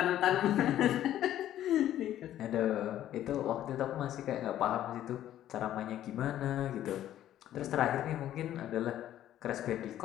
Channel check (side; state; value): right; quieter; 12.2 dB